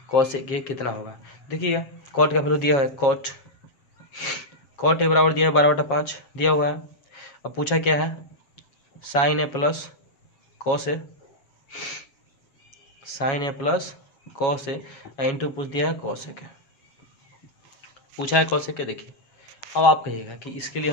cos A कितना होगा। देखिए कॉट का वैल्यू दिया हुआ है, कॉट ए बराबर दिया है 12/5 दिया हुआ है। अब पूछा क्या है, sign A plus cos A, into पूछ दिया है कॉस ए के, पूछा है कॉस ए के। देखिए अब आप कहिएगा कि इसके लिए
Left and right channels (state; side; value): late; right; 7.3 ms